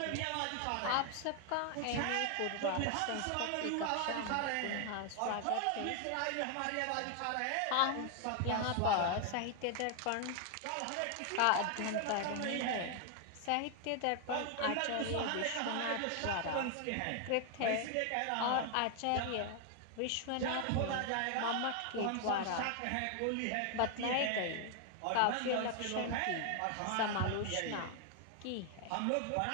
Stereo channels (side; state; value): both; different; correlation 0.00